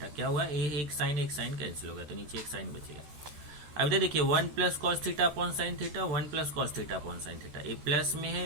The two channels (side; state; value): left; late; 13 ms